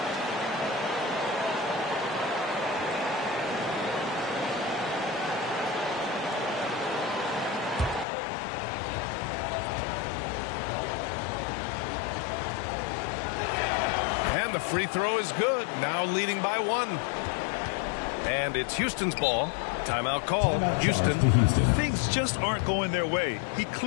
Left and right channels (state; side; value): drops out; right; at 8.1 s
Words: And the free throw is good. Now leading by 1. And it's Houston's ball. Timeout call. Houston. Things just aren't going their way. He